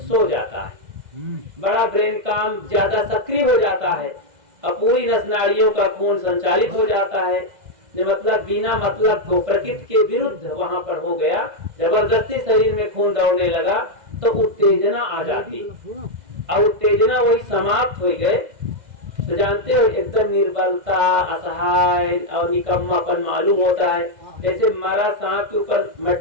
जाता है, बड़ा ब्रेन काम ज्यादा सक्रिय हो जाता है और पूरी नस नाड़ियों का खून संचालित हो जाता है। मतलब बिना मतलब को प्रकृति के विरुद्ध वहां पर हो गया, जबरदस्ती शरीर में खून दौड़ने लगा तो उत्तेजना आ जाती और उत्तेजना वही समाप्त हो गए तो जानते हो एकदम निर्बलता, असहाय और निकम्मापन मालूम होता है। जैसे मरा सांप के ऊपर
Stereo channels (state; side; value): late; left; 2.0 ms